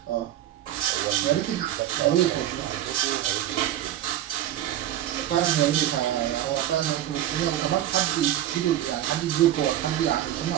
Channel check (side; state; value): left; quieter; 12.4 dB